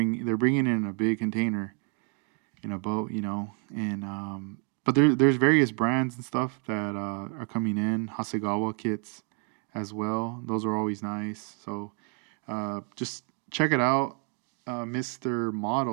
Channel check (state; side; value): quieter; left; 37.0 dB